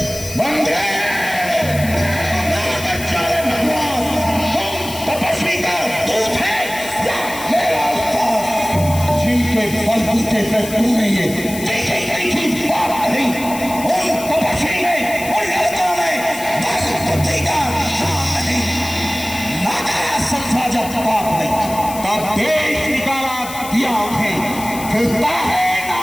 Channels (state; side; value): noise; left; hiss, 11 dB below the sound